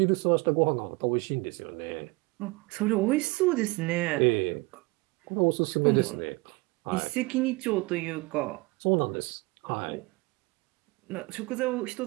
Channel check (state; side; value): quieter; left; 24.6 dB